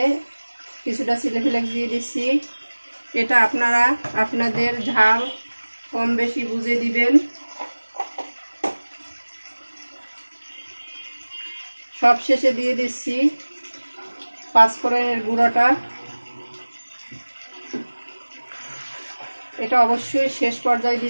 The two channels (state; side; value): inverted; both; correlation -1.00